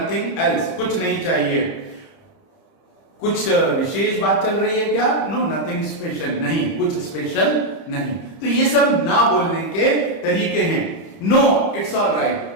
एल्स, कुछ नहीं चाहिए। कुछ विशेष बात चल रही है क्या, नो नथिंग स्पेशल, नहीं कुछ स्पेशल नहीं। तो ये सब ना बोलने के तरीके हैं। नो इट्स ऑल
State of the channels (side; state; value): right; late; 30 ms